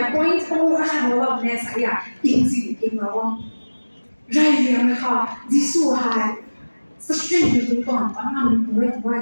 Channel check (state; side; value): inverted; both; correlation -1.00